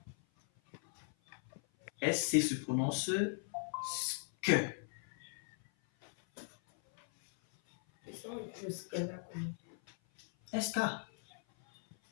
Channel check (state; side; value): silent; right; 52 dB below the other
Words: SC se prononce sk. Et ça, le sk là, comment? SK.